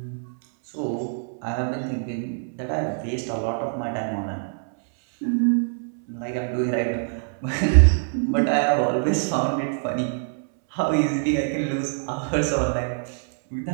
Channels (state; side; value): silent; left; 62 dB below the other